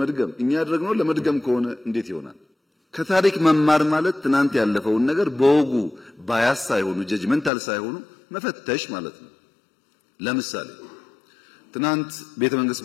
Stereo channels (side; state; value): right; drops out; at 7.5 s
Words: እኛ ያደረግነው ለመድገም ከሆነ እንዴት ይሆናል? ከታሪክ መማር ማለት ትናንት ያለፈውን ነገር በወጉ ባያስ ሳይሆኑ ጀጅመንታል ሳይሆኑ መፈተሽ ማለት ነው። ለምሳሌ ትናንት ቤተ መንግስት